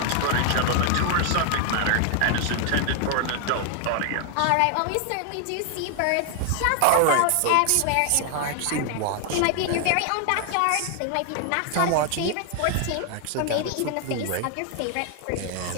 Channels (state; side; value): different; both; correlation 0.00